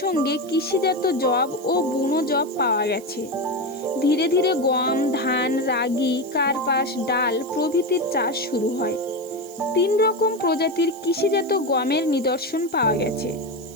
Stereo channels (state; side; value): noise; right; hiss, 21 dB below the sound